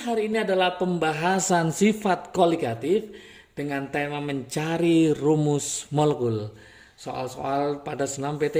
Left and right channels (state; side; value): identical; both; correlation 1.00